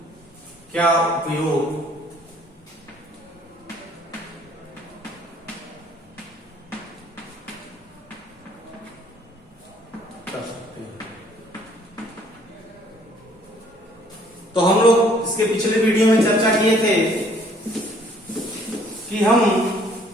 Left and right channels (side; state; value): both; normal; correlation 0.60